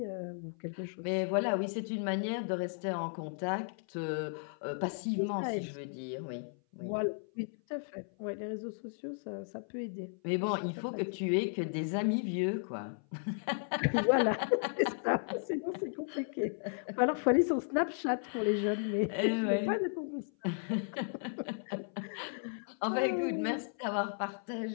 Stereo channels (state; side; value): silent; right; 55 dB below the other